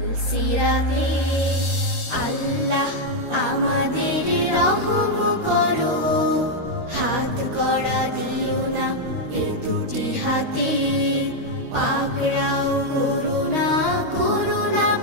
আল্লাহ আমাদের রহম করো, হাত কড়া দিও না এ দুটি হাতে, পাকড়াও করুণা করুণা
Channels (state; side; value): late; left; 13 ms